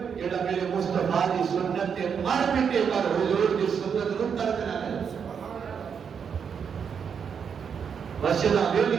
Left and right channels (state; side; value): quieter; left; 6.9 dB